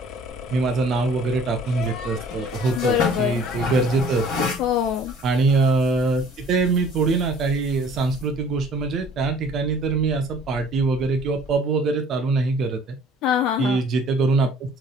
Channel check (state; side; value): normal; both; correlation 0.53